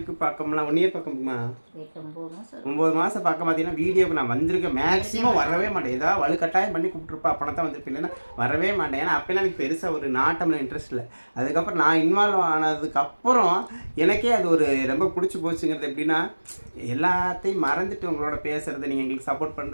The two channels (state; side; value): inverted; both; correlation -1.00